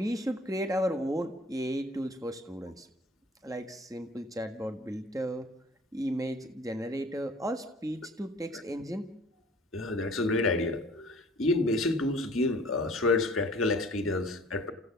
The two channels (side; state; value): both; normal; correlation 0.50